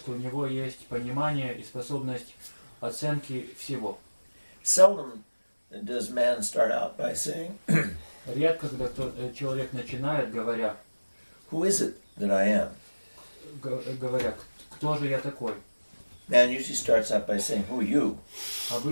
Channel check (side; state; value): both; inverted; correlation -1.00